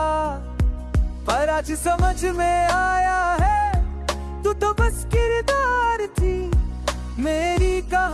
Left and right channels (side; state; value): both; identical; correlation 1.00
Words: पर आज समझ में आया है, तू तो बस किरदार थी। मेरी